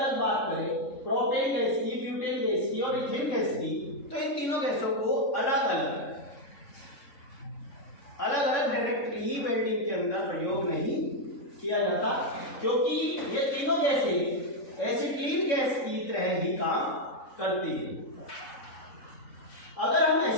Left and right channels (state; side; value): late; right; 3.7 ms